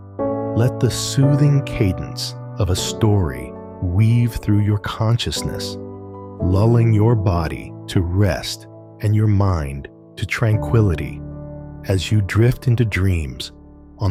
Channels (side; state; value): both; identical; correlation 1.00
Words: Let the soothing cadence of a story weave through your consciousness, lulling your body to rest and your mind to tranquility as you drift into dreams